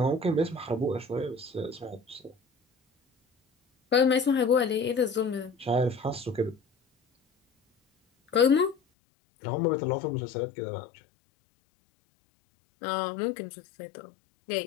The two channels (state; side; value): drops out; right; at 8.8 s